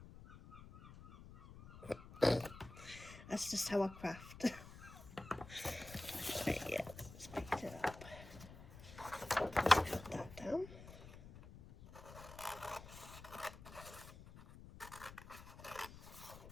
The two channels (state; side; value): noise; left; rumble, 15 dB below the sound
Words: That's just how I craft. Right, yeah, let's pick it up. Let's cut that down.